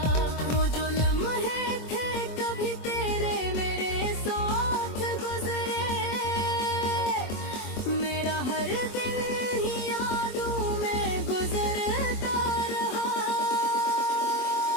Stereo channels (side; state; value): right; late; 24 ms